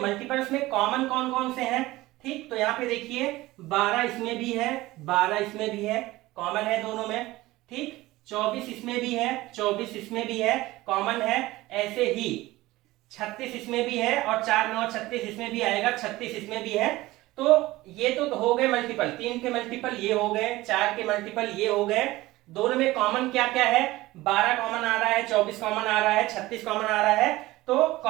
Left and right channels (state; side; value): quieter; left; 18.4 dB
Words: में कॉमन कौन कौन से हैं। ठीक, तो यहाँ पे देखिए 12 इसमें भी है, 12 इसमें भी है, कॉमन है दोनों में। ठीक, 24 इसमें भी है, 24 इसमें भी है, कॉमन है। ऐसे ही 36 इसमें भी है और 4 9 36 इसमें भी आएगा, 36 इसमें भी है। तो ये तो हो गए मल्टीपल। 3 के मल्टीपल ये हो गए, 4 के मल्टीपल ये हो गए। दोनों में कॉमन क्या क्या है, 12 कॉमन आ रहा है, 24 कॉमन आ रहा है, 36 कॉमन आ रहा है। तो